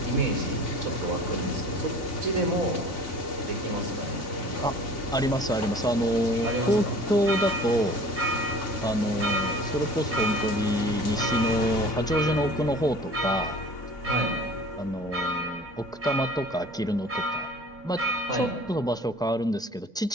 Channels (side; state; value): both; normal; correlation 0.45